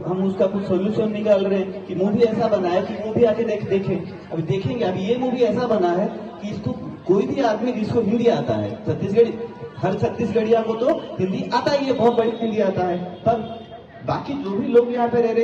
उसका कुछ सोल्यूशन निकाल रहे हैं कि मूवी ऐसा बना है कि मूवी आके देखें। अभी देखेंगे, अभी ये मूवी ऐसा बना है कि इसको कोई भी आदमी जिसको हिंदी आता है, छत्तीसगढ़ी हर छत्तीसगढ़िया को तो हिंदी आता ही है, बहुत बड़ी हिंदी आता है, पर बाकी जो भी लोग यहाँ पे रह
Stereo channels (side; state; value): both; identical; correlation 1.00